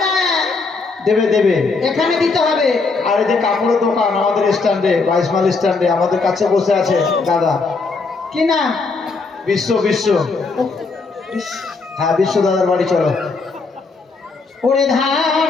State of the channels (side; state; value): right; quieter; 4.1 dB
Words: দেবে দেবে। এখানে দিতে হবে। আর এই যে কাপড়ের দোকান আমাদের স্ট্যান্ডে, 22 মাইল স্ট্যান্ডে আমাদের কাছে বসে আছে দাদা, কি নাম? বিশ্ব বিশ্ব। হ্যাঁ, বিশ্ব দাদার বাড়ি চলো। ওরে ধান